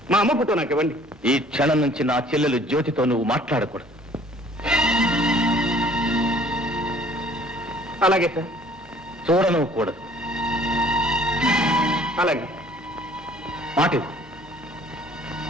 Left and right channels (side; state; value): both; normal; correlation 0.55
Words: మా అమ్మ ఫోటో నాకు ఇవ్వండి. ఈ క్షణం నుంచి నా చెల్లెలు జ్యోతితో నువ్వు మాట్లాడకూడదు. అలాగే సార్. చూడను కూడదు. అలాగే. మాట